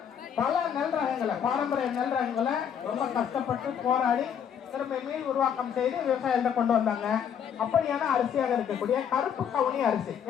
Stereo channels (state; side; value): quieter; right; 8.3 dB